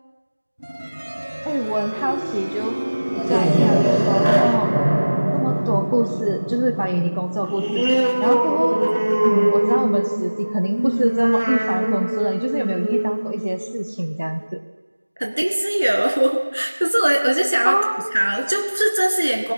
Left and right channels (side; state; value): both; inverted; correlation -1.00